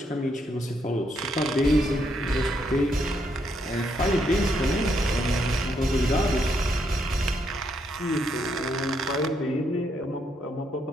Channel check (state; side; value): normal; both; correlation 0.76